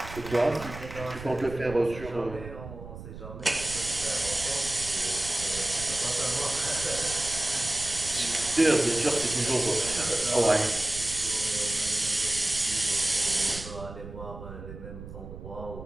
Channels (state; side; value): noise; right; rumble, 12 dB below the sound